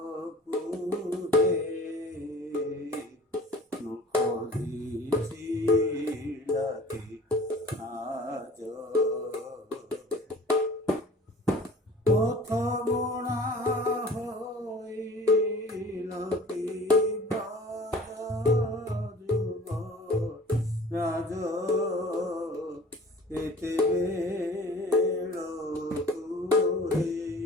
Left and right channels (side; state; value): both; normal; correlation 0.45